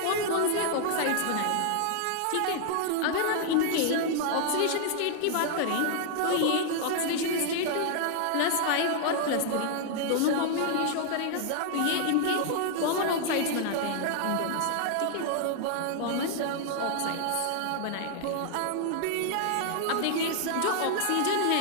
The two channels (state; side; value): different; both; correlation -0.01